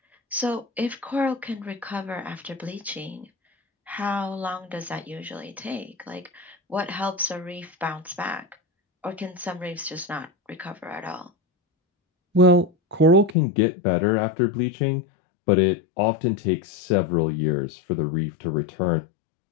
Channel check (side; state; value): right; drops out; at 13.4 s